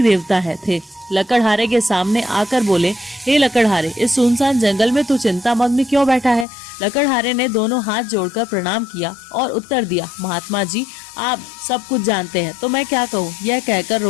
देवता थे। लकड़हारे के सामने आकर बोले, हे लकड़हारे, इस सुनसान जंगल में तू चिंतामग्न क्यों बैठा है? लकड़हारे ने दोनों हाथ जोड़कर प्रणाम किया और उत्तर दिया, महात्मा जी, आप सब कुछ जानते हैं तो मैं क्या कहूँ। यह कहकर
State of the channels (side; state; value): right; drops out; at 6.5 s